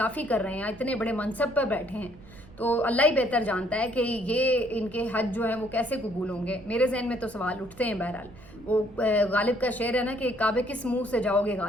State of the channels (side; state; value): right; noise; rumble, 21 dB below the sound